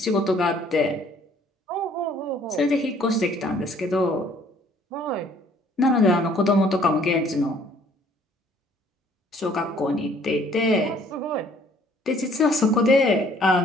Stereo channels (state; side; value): normal; both; correlation 0.59